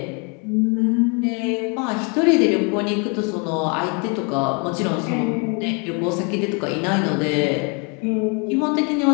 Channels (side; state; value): right; quieter; 34.2 dB